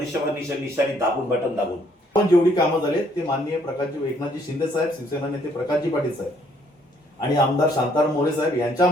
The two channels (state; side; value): normal; both; correlation 0.66